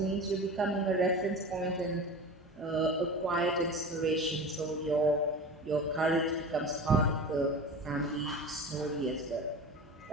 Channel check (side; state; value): both; normal; correlation 0.32